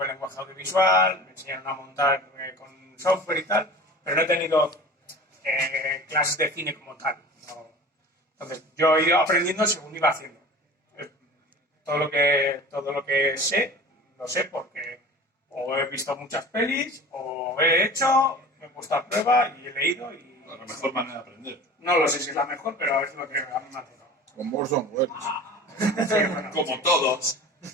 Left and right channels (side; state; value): both; normal; correlation 0.39